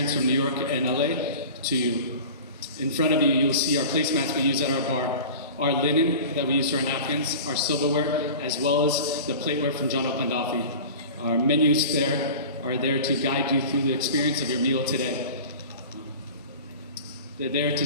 from New York and LA to you. In front of you, you'll see our placemats we use at our bar, our linen that we use for our napkins, our silverware, as well as the plateware from John Taube IV. Our menus are there to guide you through the experience of your meal today. They're there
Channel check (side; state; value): both; inverted; correlation -0.37